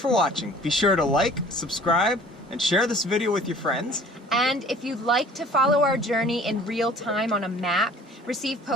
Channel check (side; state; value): both; normal; correlation 0.50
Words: watching. Be sure to like, subscribe, and share this video with your friends. And if you'd like to follow our journey in real time on a map, receive